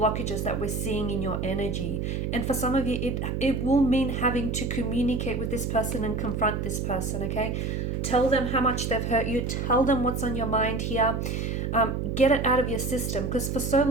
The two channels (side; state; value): right; noise; hum, 1 dB below the sound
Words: that we're seeing in your energy. And for some of you, it will mean having to communicate with this person and confront this person, okay? Tell them how much they've hurt you. Tell them what's on your mind here. Get it out of your system, because for so